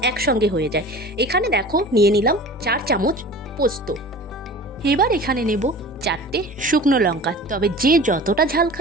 একসঙ্গে হয়ে যায়। এখানে দেখো নিয়ে নিলাম 4 চামচ পোস্ত। এবার এখানে নেব 4টে শুকনো লঙ্কা, তবে যে যতটা ঝাল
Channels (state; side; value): normal; both; correlation 0.39